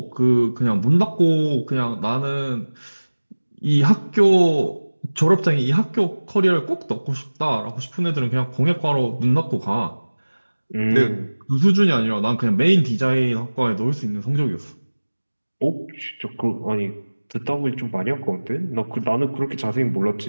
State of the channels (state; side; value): inverted; both; correlation -1.00